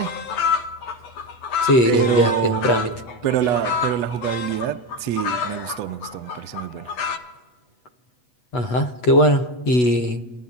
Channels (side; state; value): right; late; 8.1 ms